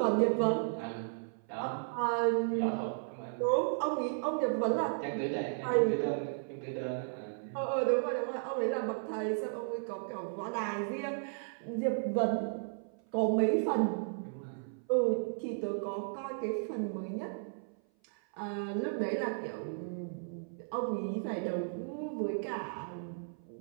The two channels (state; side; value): silent; left; 55 dB below the other